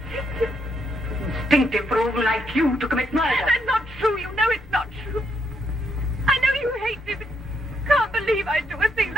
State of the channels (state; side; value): normal; both; correlation 0.77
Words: Instinctive for a woman like you to commit murder. That's not true. You know it's not true. I know you hate me, but you can't believe I'd do a thing